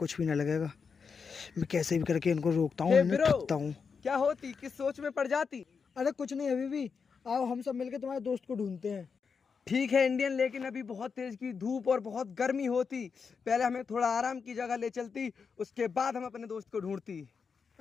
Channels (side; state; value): right; quieter; 5.7 dB